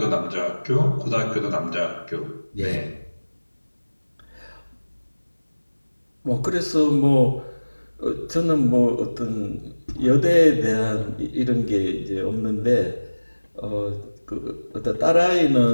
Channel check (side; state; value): both; inverted; correlation -1.00